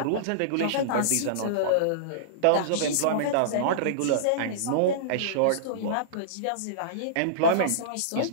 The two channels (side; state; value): both; different; correlation -0.03